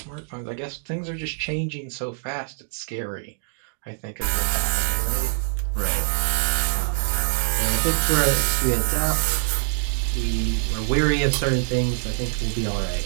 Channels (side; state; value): left; silent; digital silence